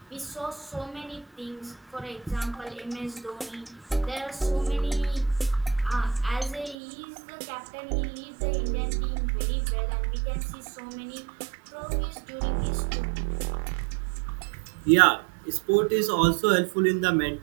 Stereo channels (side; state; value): left; drops out; at 6.8 s